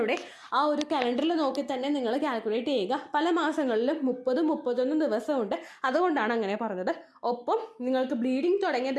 ആ ഒരു കലണ്ടറിൽ നോക്കി തന്നെ നിങ്ങൾ കാൽക്കുലേറ്റ് ചെയ്യുക. പല മാസങ്ങളിലും 30-31 ദിവസമുണ്ട്, അതുകൊണ്ടാണ് അങ്ങനെ പറഞ്ഞത്. ഒപ്പം നിങ്ങൾക്ക് ബ്ലീഡിങ് തുടങ്ങിയ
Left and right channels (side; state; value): both; identical; correlation 1.00